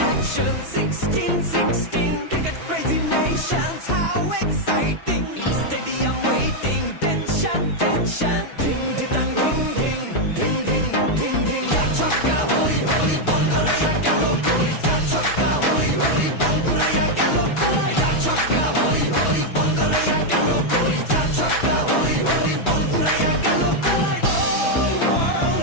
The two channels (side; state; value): right; late; 6.1 ms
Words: action 16-16, cricket crazy nations, how exciting! Stadium waiting, tension, tension. Ding ding ding ding ding ding ding ding. Ja chakka hoi hoi, Bangaraya galo koi. Ja chakka hoi hoi, Bangaraya galo koi. Ja chakka hoi hoi, Bangaraya galo koi. Ja chakka hoi hoi, Bangaraya galo koi. All